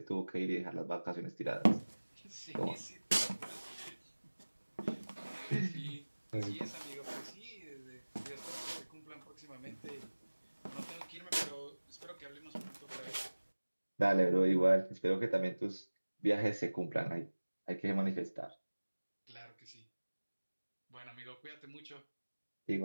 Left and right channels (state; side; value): inverted; both; correlation -1.00